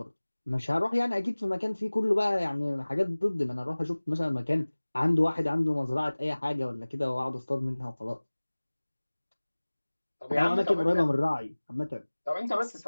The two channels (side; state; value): both; inverted; correlation -1.00